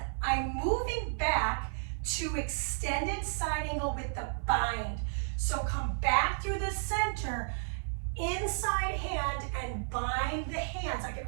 I'm moving back to extended side angle with the bind. So come back through the center, inside hand, and bind the hands. I can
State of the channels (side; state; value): left; silent; 56 dB below the other